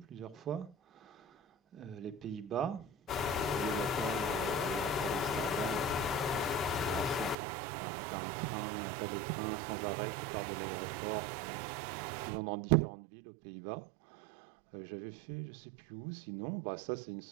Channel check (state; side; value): drops out; left; at 7.4 s